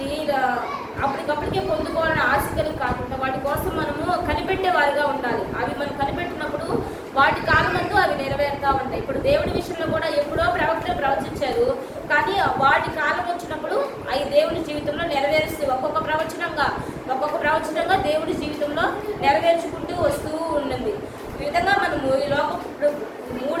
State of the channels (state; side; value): identical; both; correlation 1.00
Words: అప్పటికప్పటికే పొందుకోవాలని ఆశకలు కాకుండా వాటి కోసం మనము కనిపెట్టేవారుగా ఉండాలి. అవి మనం కనిపెట్టినప్పుడు వాటి కాలమందు అవి నెరవేరుతూ ఉంటాయి. ఇప్పుడు దేవుడి విషయంలో కూడా ఎప్పుడో ప్రవక్తలు ప్రవచించారు, కానీ వాటి కాలం వచ్చినప్పుడు అవి దేవుడి జీవితంలో నెరవేరుస్తూ ఒక్కొక్క ప్రవచనంగా దేవుడి జీవితంలో నెరవేర్చుకుంటూ వస్తూ ఉన్నది. ఈ విధంగా మనము ఈ లోకం